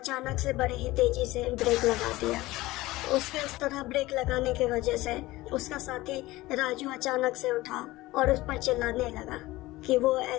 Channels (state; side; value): quieter; right; 18.8 dB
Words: से बड़ी ही तेजी से ब्रेक लगा दिया। उसके इस तरह ब्रेक लगाने की वजह से उसका साथी राजू अचानक से उठा और उस पर चिल्लाने लगा कि वो